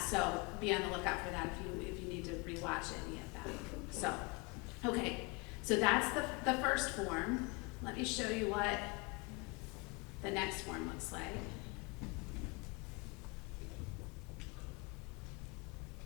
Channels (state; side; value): quieter; right; 28.5 dB